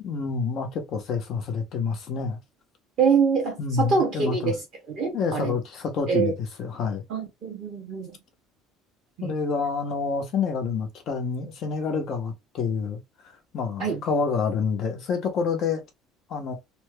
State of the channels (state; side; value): normal; both; correlation 0.44